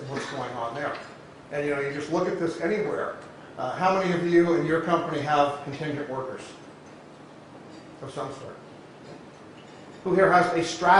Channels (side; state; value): both; identical; correlation 1.00